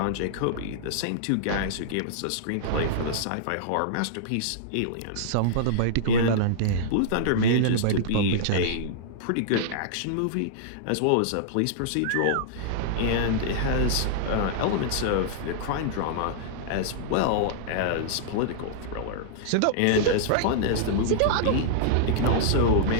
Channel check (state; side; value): different; both; correlation -0.01